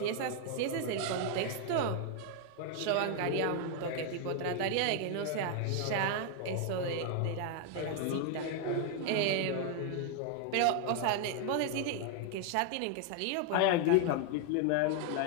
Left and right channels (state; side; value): different; both; correlation 0.00